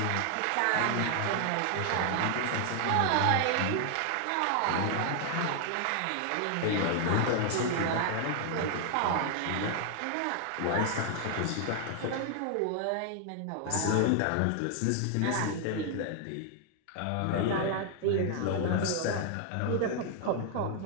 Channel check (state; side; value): different; both; correlation 0.00